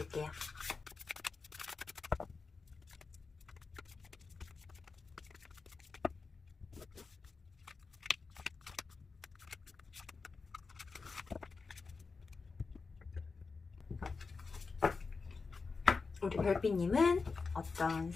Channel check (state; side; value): quieter; right; 4.5 dB